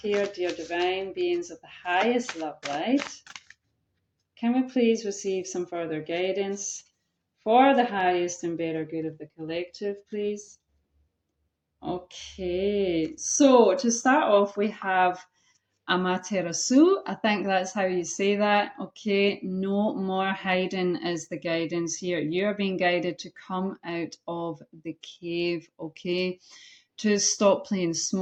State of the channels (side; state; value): both; identical; correlation 1.00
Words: Dear divine beings of the highest love light, can we please receive some further guidance for the highest and better good of the collective, please? Okay, so to start off, we have Amaterasu. I think that's how you say that. Okay, no more hiding is the guidance here. You're being guided to come out of the cave, okay? To stop playing